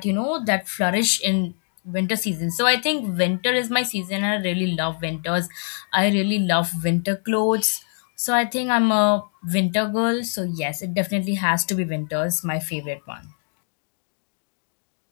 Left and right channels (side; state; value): right; silent; 59 dB below the other